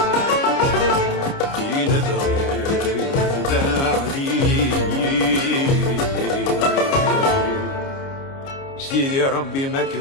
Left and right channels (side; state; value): right; late; 29 ms